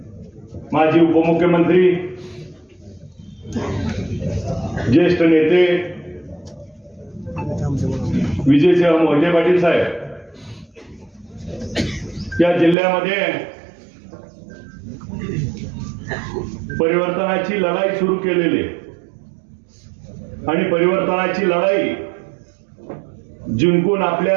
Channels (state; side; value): drops out; left; at 12.8 s